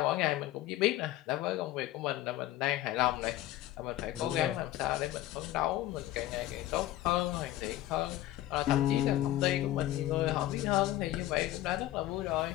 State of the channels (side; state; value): right; quieter; 14.6 dB